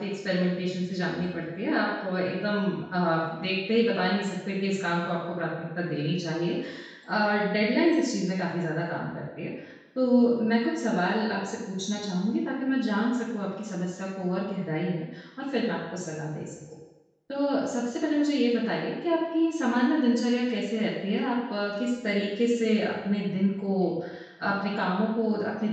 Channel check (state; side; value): identical; both; correlation 1.00